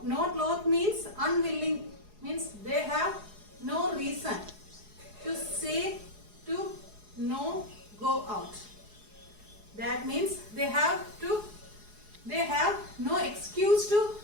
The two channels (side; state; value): left; late; 4.8 ms